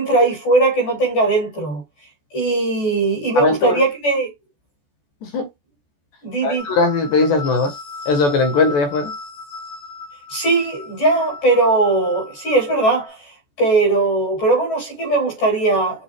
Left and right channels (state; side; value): late; right; 14 ms